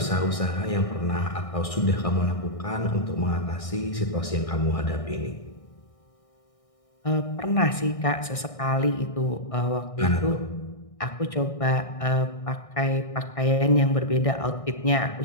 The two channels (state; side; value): late; right; 1.6 ms